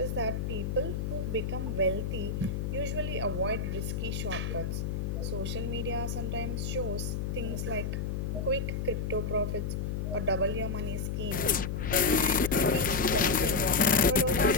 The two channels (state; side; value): noise; left; hum, 2 dB below the sound